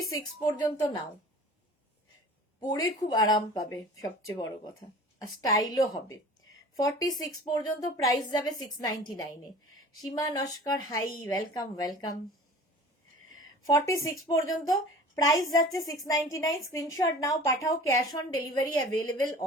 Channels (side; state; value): both; normal; correlation 0.42